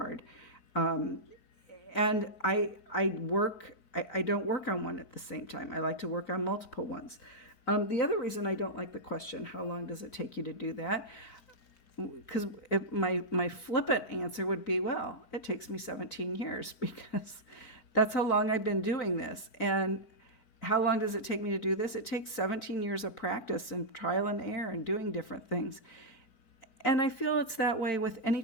And I don't work on one at the same time. I like to work on multiple ones. The other reason I don't like the question, how long does it take you to do that? Because my flippant answer would be, well, it takes me 17 years, because that's how long I've been doing this. And how long does it take me to do this? It takes 17 years of practice and trial and error and doing different things. And I feel it's that way with any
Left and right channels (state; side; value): late; right; 4.5 ms